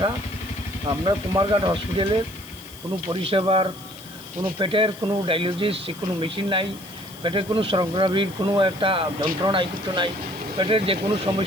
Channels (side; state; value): left; noise; hiss, 18 dB below the sound